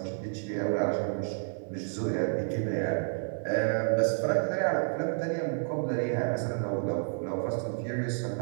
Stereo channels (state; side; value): silent; left; 58 dB below the other